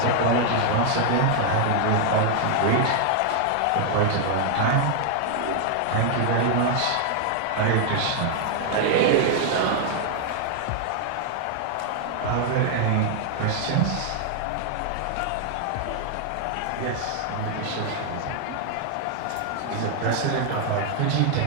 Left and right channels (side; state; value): both; different; correlation 0.00